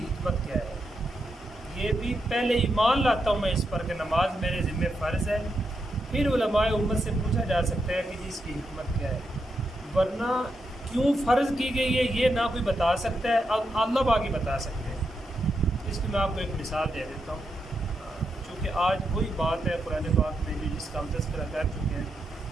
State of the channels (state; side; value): normal; both; correlation 0.84